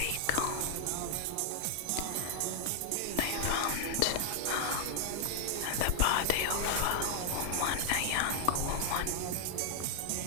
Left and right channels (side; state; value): both; different; correlation 0.00